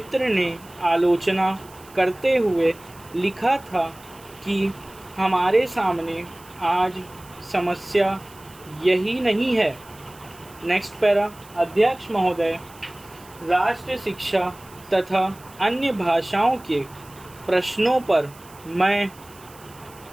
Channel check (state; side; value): noise; right; hiss, 23 dB below the sound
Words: ने आलोचना करते हुए लिखा था कि हमारे सामने आज समस्या यही नहीं है। Next para. अध्यक्ष महोदय, राष्ट्र शिक्षा तथा अन्य भाषाओं के प्रश्नों पर मैं